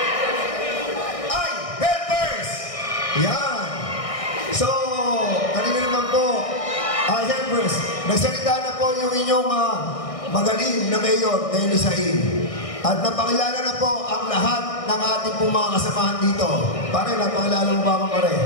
Ay, Helpers! Yan! So, kanina naman po, Helpers, nagsalita na po yung inyong magaling na Mayor Denny Sain. At napakilala na po ang lahat ng ating pong mga kasamahan dito. Pare, napakilala mo ba ako, pare?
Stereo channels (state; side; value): late; right; 1.6 ms